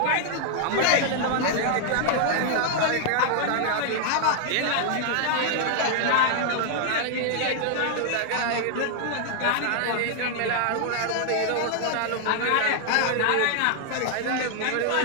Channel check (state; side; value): different; both; correlation 0.00